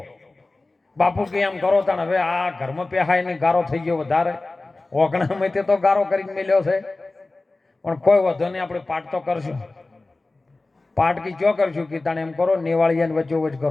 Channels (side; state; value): right; quieter; 3.2 dB